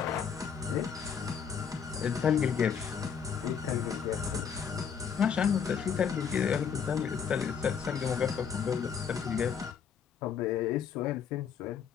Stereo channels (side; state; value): right; quieter; 7.2 dB